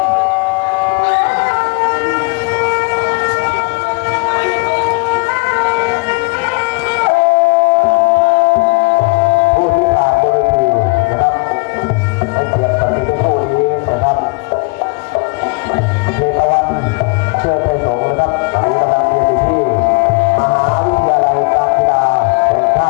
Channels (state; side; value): quieter; right; 31.0 dB